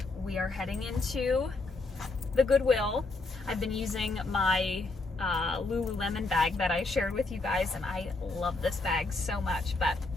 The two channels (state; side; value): quieter; right; 3.4 dB